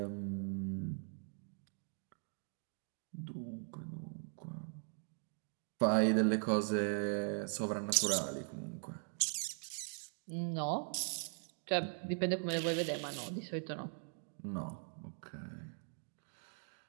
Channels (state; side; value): silent; left; 51 dB below the other